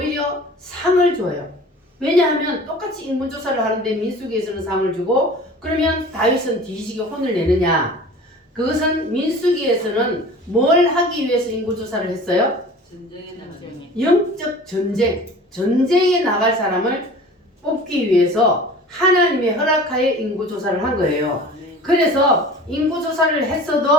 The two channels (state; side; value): normal; both; correlation 0.41